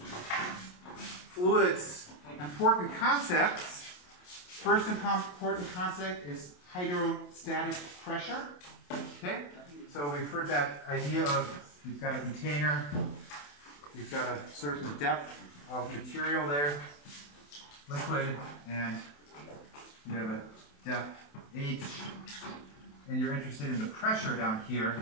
fluids, important concepts. First important concept is hydrostatic pressure. Okay. So we've heard that idea of you've got a container. You've got a certain depth of material there, liquid, and you have a depth H, and you're interested in the pressure down here.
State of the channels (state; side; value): late; right; 28 ms